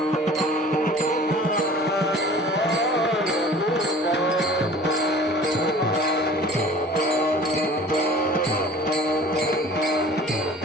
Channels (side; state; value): both; normal; correlation 0.45